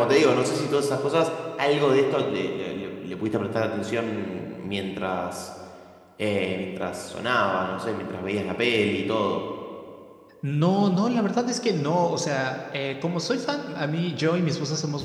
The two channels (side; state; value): both; identical; correlation 1.00